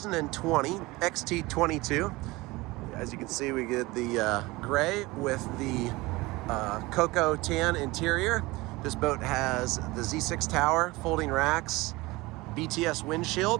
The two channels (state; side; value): quieter; left; 21.5 dB